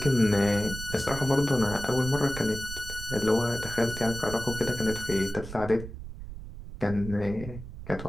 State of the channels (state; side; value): noise; right; rumble, 11 dB below the sound